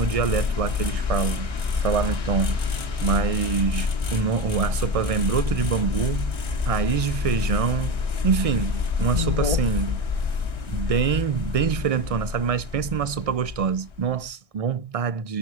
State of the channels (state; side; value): late; left; 1.6 ms